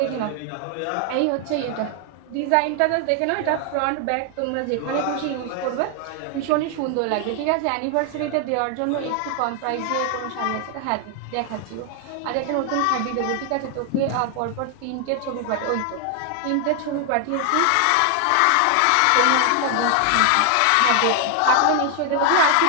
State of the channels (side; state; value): both; different; correlation 0.00